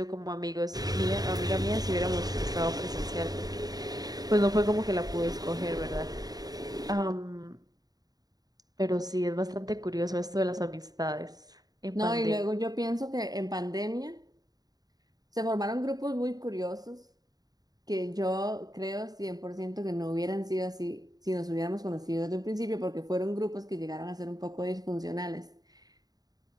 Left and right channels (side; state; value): left; late; 0.18 ms